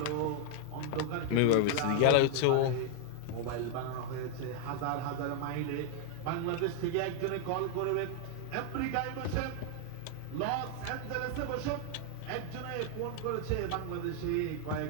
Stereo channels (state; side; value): different; both; correlation 0.00